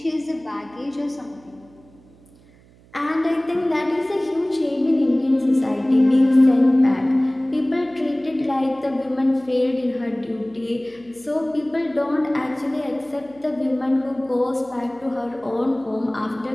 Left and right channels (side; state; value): right; noise; hum, 27 dB below the sound